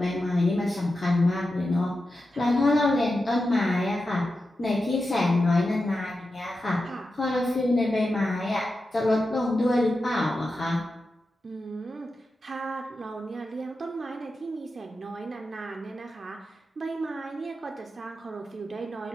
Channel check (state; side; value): normal; both; correlation 0.90